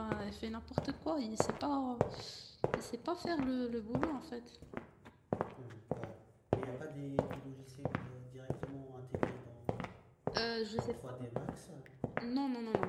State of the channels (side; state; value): both; identical; correlation 1.00